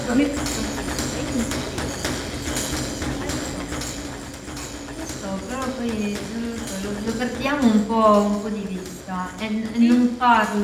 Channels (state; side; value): identical; both; correlation 1.00